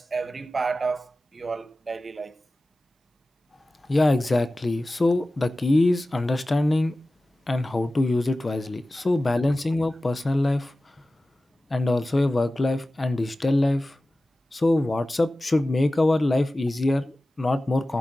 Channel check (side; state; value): both; normal; correlation 0.96